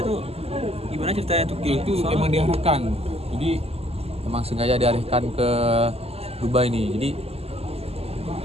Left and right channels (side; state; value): left; late; 0.29 ms